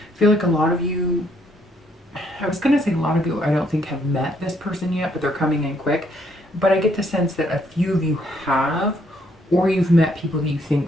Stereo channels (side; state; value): both; normal; correlation 0.70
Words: feel like a lot of you, I was going to say a lot of you, I don't think have met this person yet, but they're coming in quick. But I get the sense that a few of you have, or you've met people that you